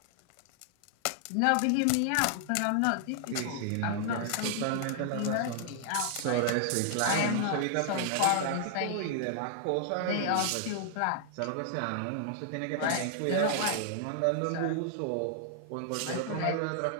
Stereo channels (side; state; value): both; different; correlation 0.00